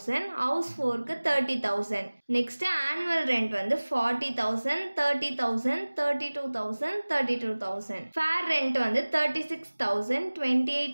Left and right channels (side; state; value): both; inverted; correlation -1.00